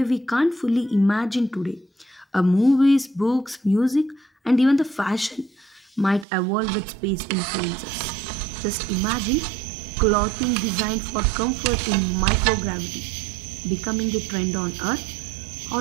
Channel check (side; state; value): left; drops out; at 6.2 s